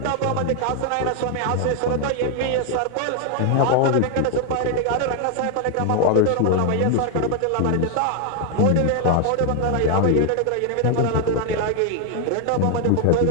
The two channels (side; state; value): both; different; correlation 0.00